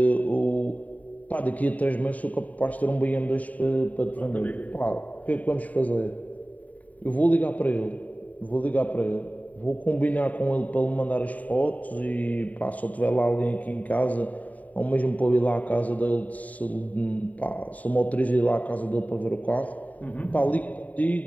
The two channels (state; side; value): late; right; 0.072 ms